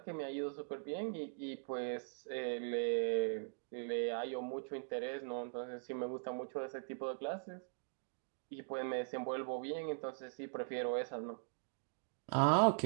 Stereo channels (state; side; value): silent; left; digital silence